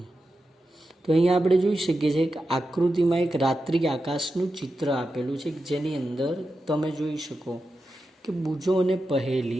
તો અહીંયા આપણે જોઈ શકીએ છીએ કે આકૃતિમાં એક રાત્રિ આકાશનું ચિત્ર આપેલું છે, જેની અંદર તમે જોઈ શકો કે બુજો અને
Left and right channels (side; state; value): both; normal; correlation 0.90